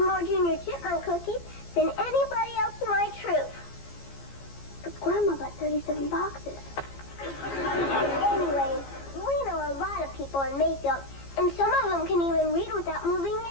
more Junior Chipmunk cookies than anybody else in my troop. But Grandma bought 37 boxes. Anyways, we know a lot of people in Mayfield, and some of them can even read without moving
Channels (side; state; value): right; late; 15 ms